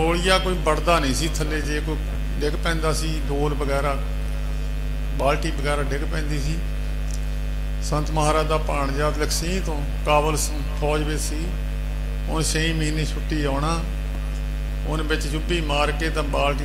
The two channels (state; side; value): identical; both; correlation 1.00